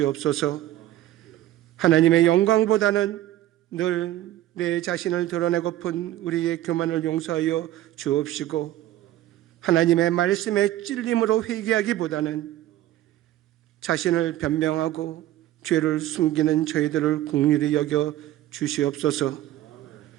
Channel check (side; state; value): left; quieter; 14.1 dB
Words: 하나님의 영광보다는 늘 내 자신을 드러내고픈 우리의 교만을 용서하여 주옵시고 하나님의 말씀에 찔림으로 회개하기보다는 자신을 변명하고 죄를 숨기는 저희들을 긍휼히 여겨 주시옵소서.